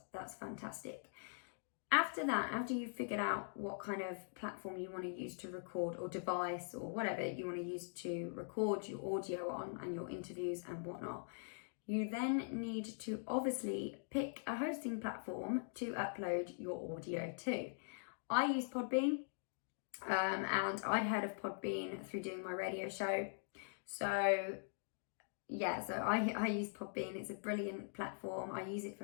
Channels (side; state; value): right; silent; digital silence